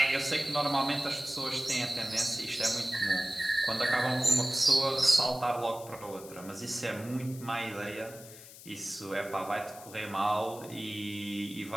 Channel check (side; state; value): left; noise; hiss, 17 dB below the sound